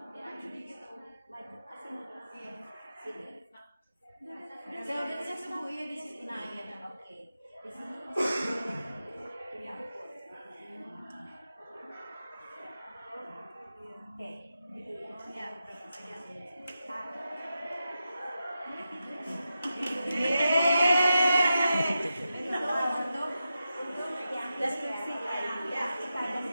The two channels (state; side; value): inverted; both; correlation -0.90